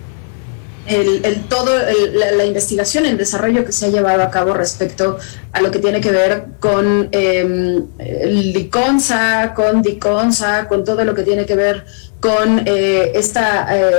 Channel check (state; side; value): silent; right; digital silence